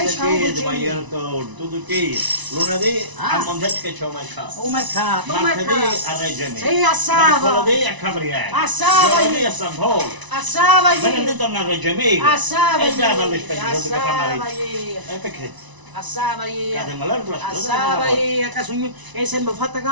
Ma io tutto che lunedì a Montecchi che c'è un mercato. Un mercato. Martedì a Reggio Emilia. Sì, a Sava. Mercoledì a Capriere. A Sava. Giovedì a San Polo. A Sava. Venerdì torna a Reggio Emilia. A Sava. E già dalle spese che fa male. A Perché? Assava io, Cade malare la assava io, a caso mio, e sempre fatta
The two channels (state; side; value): late; left; 1.0 ms